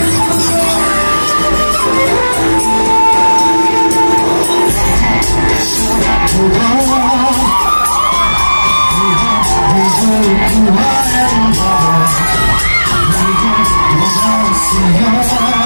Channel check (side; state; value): both; inverted; correlation -1.00